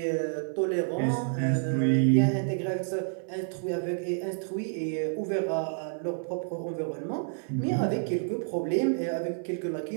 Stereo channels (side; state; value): left; silent; 58 dB below the other